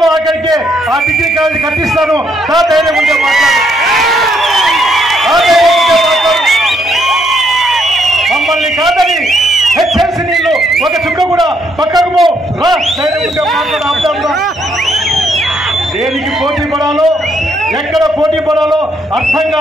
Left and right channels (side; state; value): both; normal; correlation 0.73